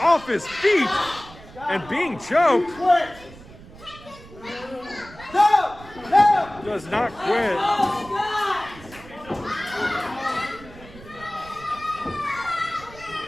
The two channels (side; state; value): right; noise; rumble, 19 dB below the sound